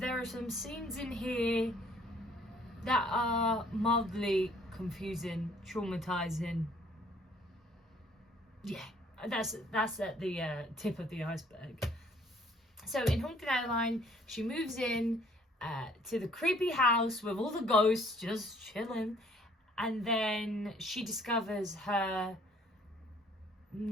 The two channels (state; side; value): normal; both; correlation 0.60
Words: are some scenes in here that are mildly confusing, traumatizing. Yeah, that's at the tip of the iceberg. So in Haunted Adeline, she moves in to the creepy house with all the ghosts just chilling, and then she discovers her